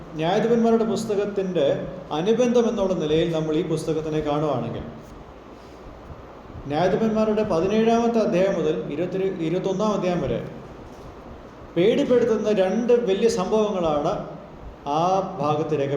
ന്യായാധിപന്മാരുടെ പുസ്തകത്തിൻ്റെ അനുബന്ധം എന്നുള്ള നിലയിൽ നമ്മൾ ഈ പുസ്തകത്തിനെ കാണുകയാണെങ്കിൽ ന്യായാധിപന്മാരുടെ 17-ാമത്തെ അധ്യായം മുതൽ 21-ാം അധ്യായം വരെ പേടിപ്പെടുത്തുന്ന 2 വലിയ സംഭവങ്ങളാണ് ആ ഭാഗത്ത്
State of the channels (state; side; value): identical; both; correlation 1.00